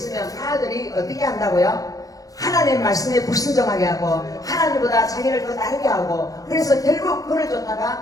아들이 어떻게 한다고요? 하나님의 말씀에 불순종하게 하고 하나님보다 자기를 더 다르게 하고 그래서 결국 그를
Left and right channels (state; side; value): late; right; 0.17 ms